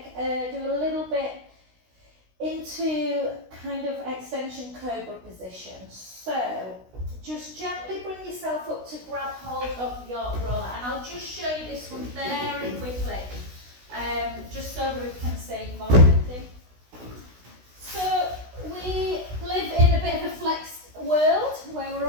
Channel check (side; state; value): left; late; 16 ms